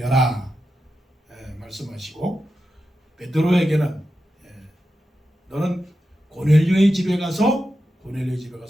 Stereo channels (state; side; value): normal; both; correlation 0.89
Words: 말씀하시고, 베드로에게는 너는 고넬료의 집에 가서